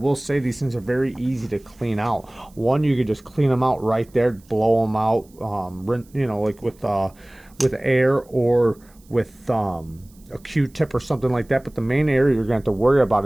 say these things are very easy to clean out. One, you could just clean them out right there, blow them out, you know, like with air or with a Q-tip or something like that. But the main area you're going to have to worry about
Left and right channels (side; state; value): right; noise; hiss, 30 dB below the sound